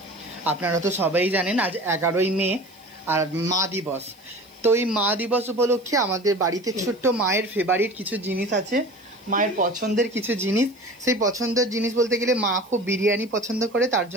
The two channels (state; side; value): noise; right; hiss, 30 dB below the sound